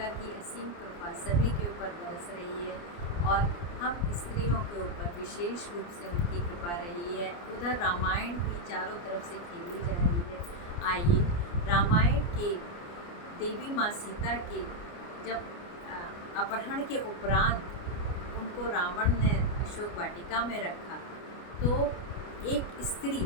की असीम कृपा सभी के ऊपर बरस रही है और हम स्त्रियों के ऊपर विशेष रूप से उनकी कृपा रही है। उधर रामायण भी चारों तरफ से खेली जा रही है। आइए रामायण के देवी माँ सीता के जब अपहरण के उपरांत उनको रावण ने अशोक वाटिका में रखा तो एक स्त्री,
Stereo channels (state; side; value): late; right; 29 ms